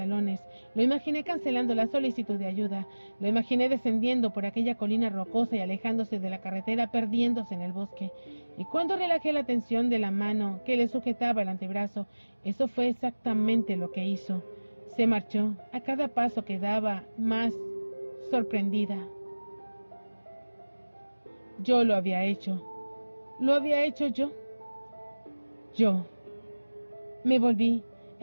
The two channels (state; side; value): inverted; both; correlation -1.00